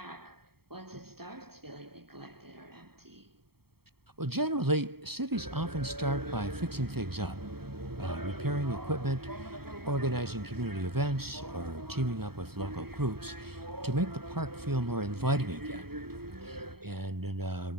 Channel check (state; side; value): late; left; 0.95 ms